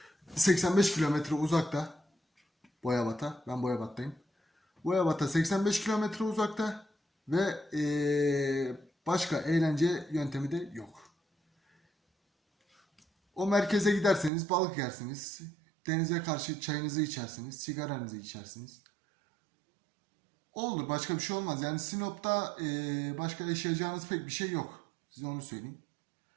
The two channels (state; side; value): drops out; left; at 14.3 s